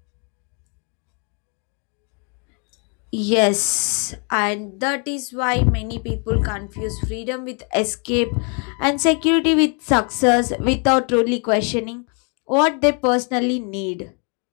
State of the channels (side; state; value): right; quieter; 37.5 dB